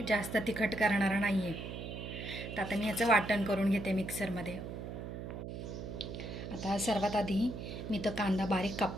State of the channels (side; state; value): right; noise; hum, 7 dB below the sound